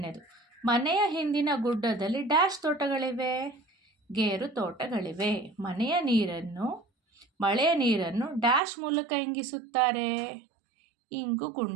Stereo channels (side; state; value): left; drops out; at 8.6 s